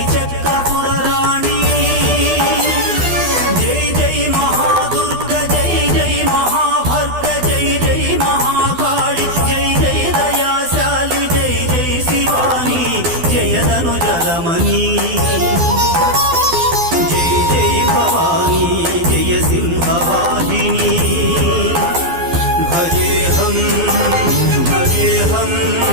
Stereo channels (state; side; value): late; left; 12 ms